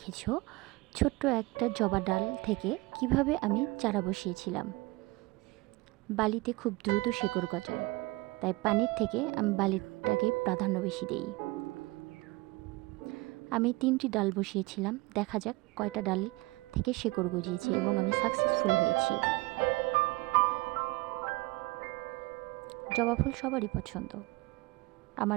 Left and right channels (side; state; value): left; quieter; 22.9 dB